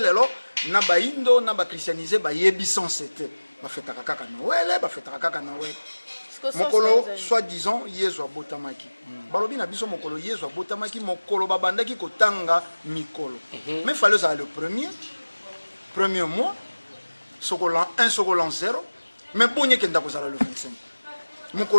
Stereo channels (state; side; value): inverted; both; correlation -1.00